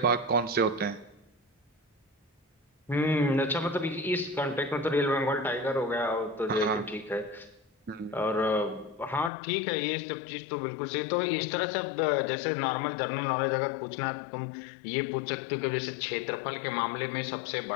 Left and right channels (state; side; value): drops out; right; at 9.3 s